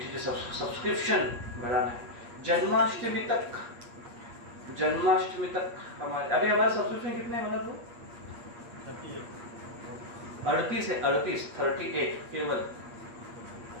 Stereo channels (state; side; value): late; left; 8.4 ms